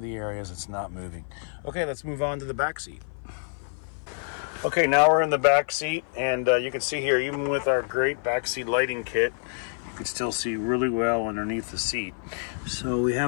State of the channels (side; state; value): right; silent; 56 dB below the other